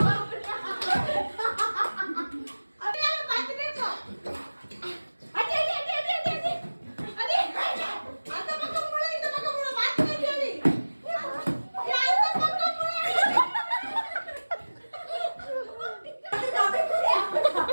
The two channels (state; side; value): inverted; both; correlation -1.00